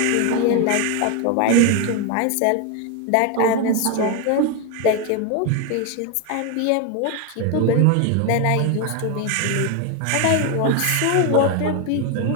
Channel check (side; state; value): both; different; correlation 0.01